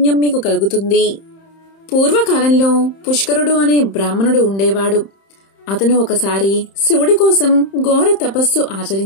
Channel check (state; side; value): late; right; 31 ms